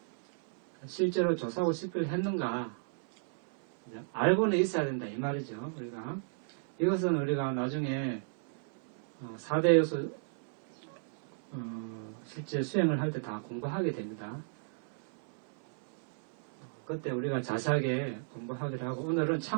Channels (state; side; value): silent; left; 55 dB below the other